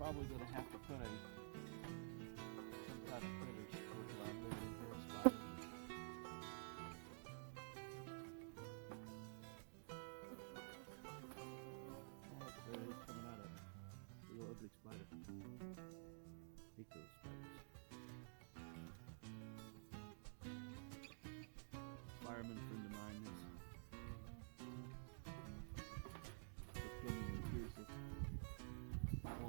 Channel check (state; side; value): silent; left; digital silence